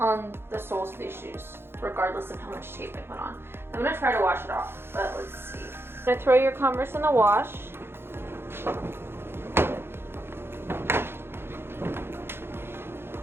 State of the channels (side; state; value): left; late; 0.11 ms